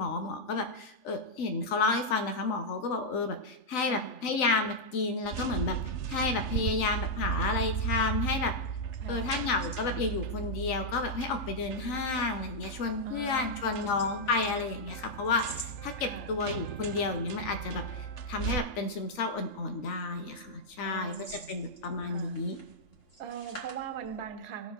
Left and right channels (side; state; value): right; late; 3.9 ms